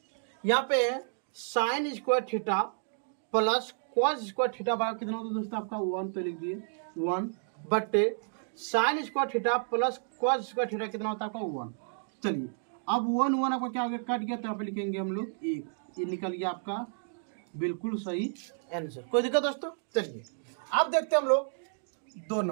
यहाँ पे है sine square theta plus cos square theta बराबर कितना होता है दोस्तों आपका 1, तो लिख दिए 1 बट्टे sine square theta plus cos square theta कितना होता है आपका 1। चलिए अब 1 आपका क्या हो गया कट गया, तो यहाँ पे लिखेंगे हम लोग 1। ये निकल गया आपका बिल्कुल सही आंसर। कोई दिक्कत दोस्तों? चलिए अब देखते हैं हम लोग 2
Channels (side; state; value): left; silent; digital silence